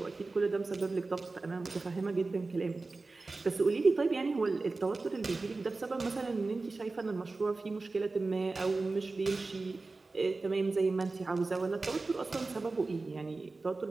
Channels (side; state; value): left; quieter; 3.6 dB